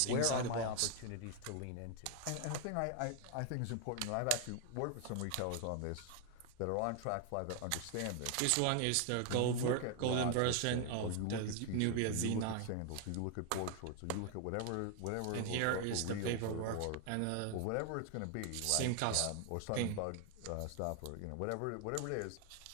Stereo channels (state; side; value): different; both; correlation 0.00